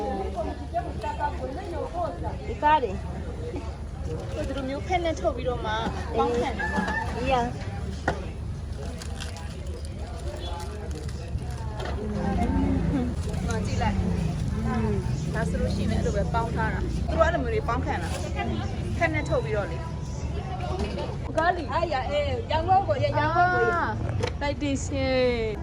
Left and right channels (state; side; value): identical; both; correlation 1.00